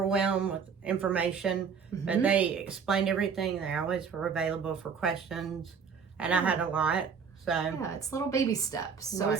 with information, but they explained everything. They always were available for questions, and I had a lot. So yeah, it's little baby steps. So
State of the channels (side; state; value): left; quieter; 6.2 dB